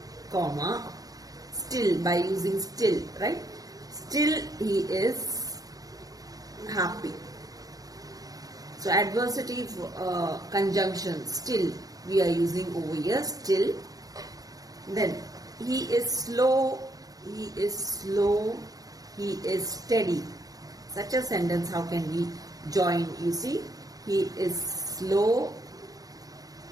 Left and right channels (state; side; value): late; left; 0.18 ms